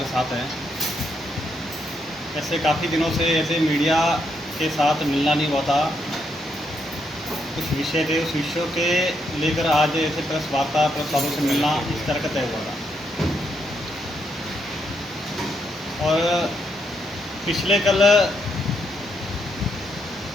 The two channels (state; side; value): normal; both; correlation 0.77